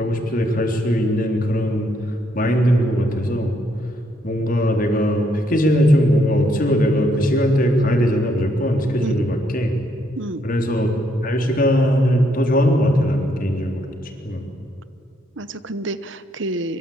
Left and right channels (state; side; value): normal; both; correlation 0.73